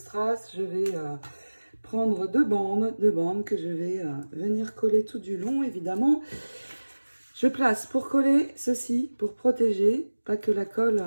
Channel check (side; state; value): both; inverted; correlation -1.00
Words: je vais prendre deux bandes que je vais venir coller tout du long, évidemment. Je place pour coller ceci, pour protéger, pas que la colle,